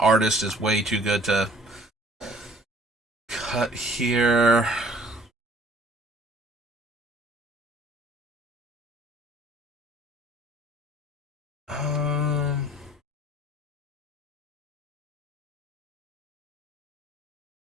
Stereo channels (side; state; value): both; normal; correlation 0.55